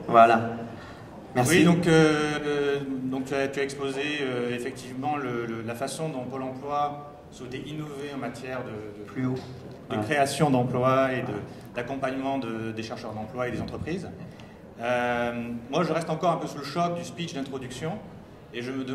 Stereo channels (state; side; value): identical; both; correlation 1.00